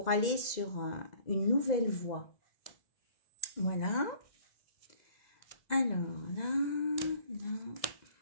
aller sur une nouvelle voie. Voilà. Alors là,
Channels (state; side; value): late; right; 2.0 ms